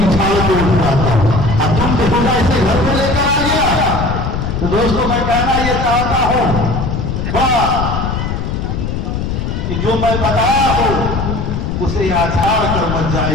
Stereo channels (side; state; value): left; noise; rumble, 3 dB below the sound